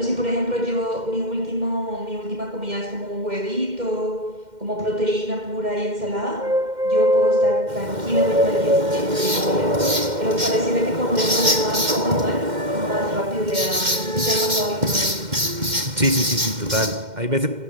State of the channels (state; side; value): late; left; 2.1 ms